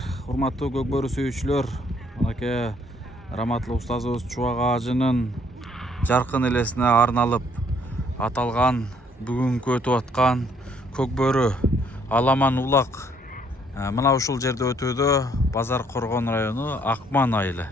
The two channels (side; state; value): both; normal; correlation 0.65